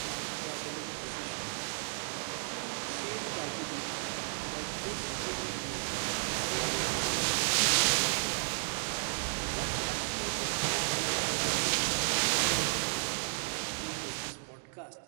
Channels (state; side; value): silent; left; digital silence